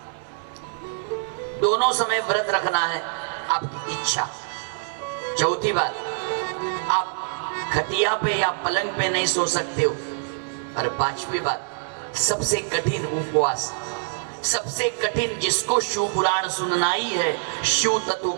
दोनों समय व्रत रखना है, आपकी इच्छा। चौथी बात, आप खटिया पे या पलंग पे नहीं सो सकते हो। और 5वीं बात, सबसे कठिन उपवास, सबसे कठिन, जिसको शिव पुराण सुनना ही है, शिव तत्व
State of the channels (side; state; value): left; silent; digital silence